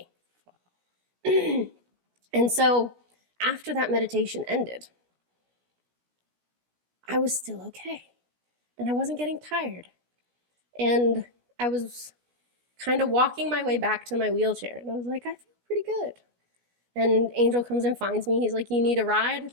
And so after that meditation ended, I was still okay. And I wasn't getting tired. And I was kind of walking my way back to my wheelchair. And I was like, I feel pretty good. And Angel comes and finds me. He's like, "You need a ride,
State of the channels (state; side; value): late; left; 17 ms